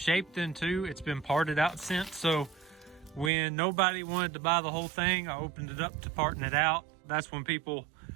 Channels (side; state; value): left; drops out; at 3.3 s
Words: then too. It's been parted out since, so when nobody wanted to buy the whole thing, I opened it up to parting it out. That's when people